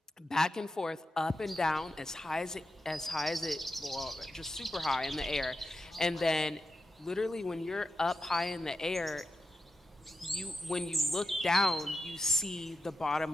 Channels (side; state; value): both; normal; correlation 0.89